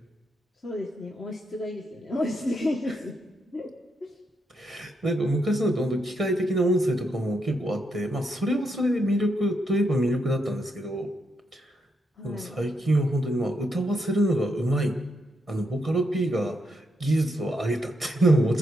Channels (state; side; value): normal; both; correlation 0.80